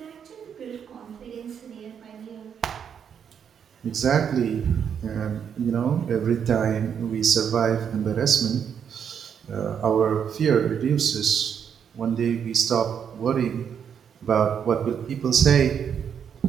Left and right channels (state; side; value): quieter; left; 7.8 dB